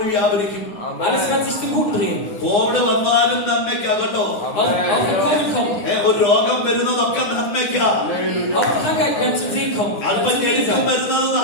വ്യാപരിക്കും. Alles wird sich zum Guten drehen. Covid വന്നാലും നന്മയ്ക്കാകട്ടോ. Auch wenn Covid kommt, ഒരു രോഗം വരുന്നതൊക്കെ നന്മയ്ക്കാ. auch Krankheit wird zum Segen kommen. അല്പം ഞെരുക്കം വരുന്നത്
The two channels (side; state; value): right; late; 9.7 ms